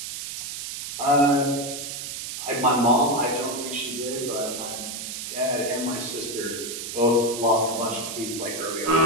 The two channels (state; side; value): noise; right; hiss, 7 dB below the sound